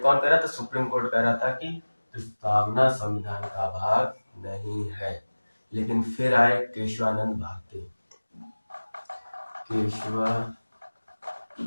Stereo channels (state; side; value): inverted; both; correlation -1.00